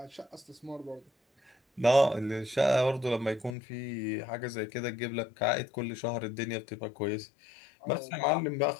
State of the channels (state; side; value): drops out; right; at 3.6 s